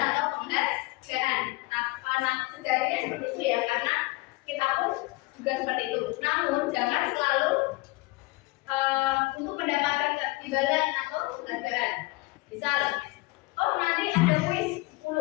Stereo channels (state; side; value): quieter; right; 23.4 dB